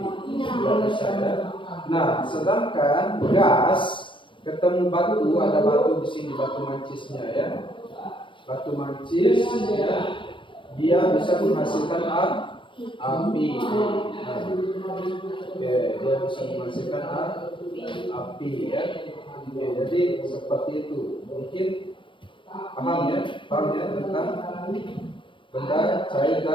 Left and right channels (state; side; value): late; right; 0.24 ms